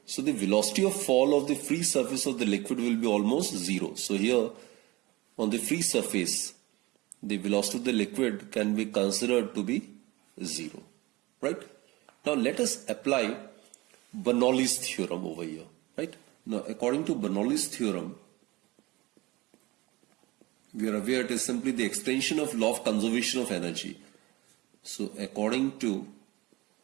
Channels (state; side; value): quieter; left; 21.5 dB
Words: So the velocity of fall of the free surface of the liquid will be almost zero. So here on the free surface, the velocity of the liquid can be considered to be zero. Right? Now let us apply Bernoulli's theorem over here. Right? Now according to Bernoulli's theorem, we are aware it is simply the extension of law of conservation of energy. So according to